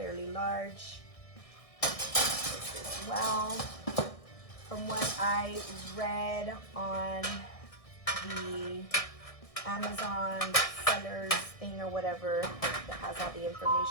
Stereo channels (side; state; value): right; late; 1.6 ms